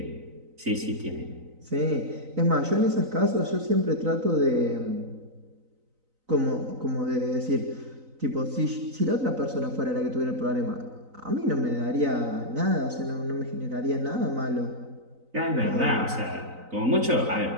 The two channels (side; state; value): left; late; 3.9 ms